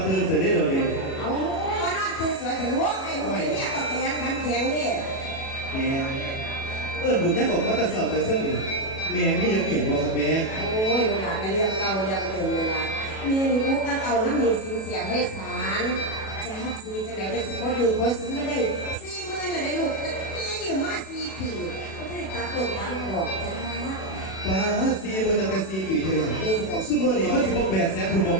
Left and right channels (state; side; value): late; right; 37 ms